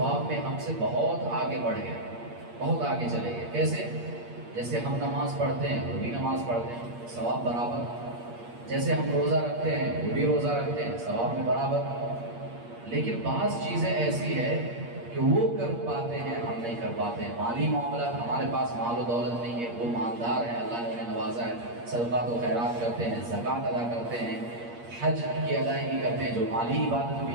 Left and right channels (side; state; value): left; late; 8.5 ms